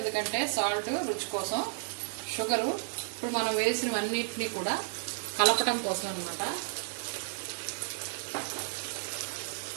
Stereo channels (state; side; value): silent; left; digital silence